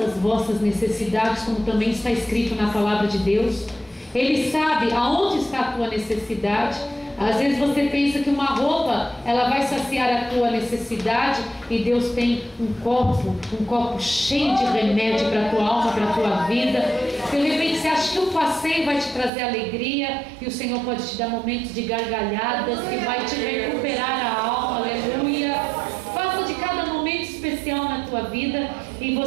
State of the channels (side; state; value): left; drops out; at 19.3 s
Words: vossas necessidades, como também está escrito na palavra de Deus. Ele sabe aonde está a tua necessidade. Às vezes você pensa que uma roupa ela vai saciar a tua necessidade, e Deus tem um copo cheio de remédio para a tua alma, para a tua vida. De repente você acha que um passeio vai te trazer alegria, e o Senhor pode te dar momentos de gargalhadas que vai te recuperar a alma. Aleluia. Faça de cada momento especial na tua vida, e